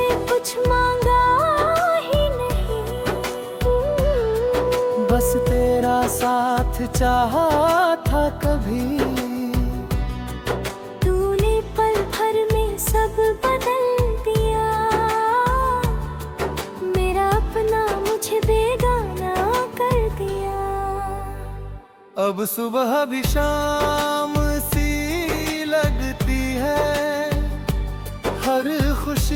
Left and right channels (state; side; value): identical; both; correlation 1.00